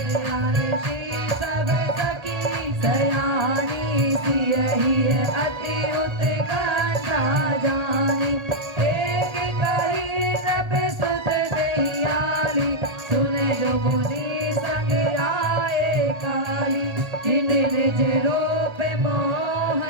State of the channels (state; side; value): late; left; 1.3 ms